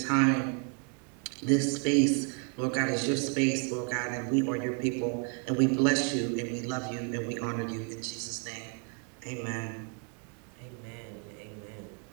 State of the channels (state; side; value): quieter; left; 39.9 dB